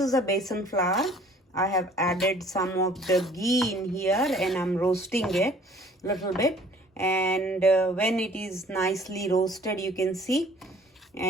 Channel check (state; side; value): normal; both; correlation 0.53